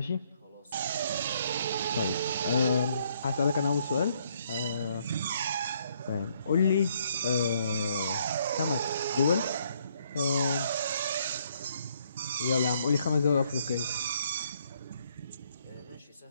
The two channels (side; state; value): both; inverted; correlation -0.69